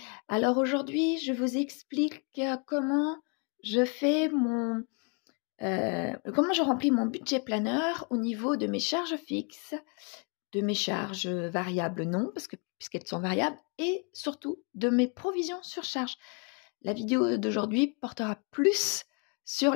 Alors aujourd'hui, je vous explique comment je fais comment je remplis mon budget planeur au niveau de mes charges fixes, de mes charges variables non, puisqu'elles sont variables, et surtout de mes provisions sur charge. La vidéo d'aujourd'hui portera plus sur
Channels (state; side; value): quieter; right; 34.9 dB